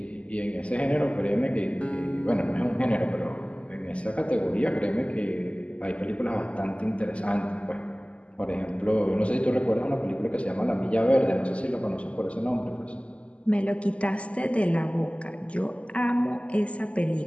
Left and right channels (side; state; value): right; late; 0.060 ms